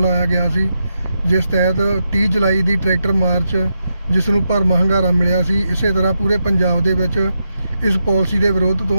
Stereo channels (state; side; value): inverted; both; correlation -0.85